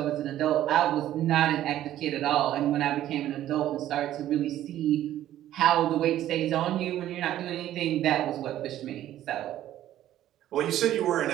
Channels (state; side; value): quieter; left; 12.7 dB